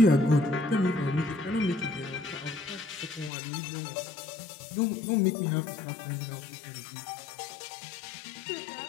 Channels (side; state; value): right; drops out; at 3.3 s